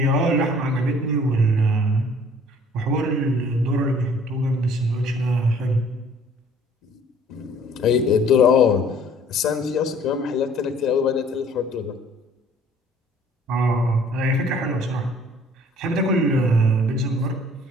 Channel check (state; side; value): normal; both; correlation 0.55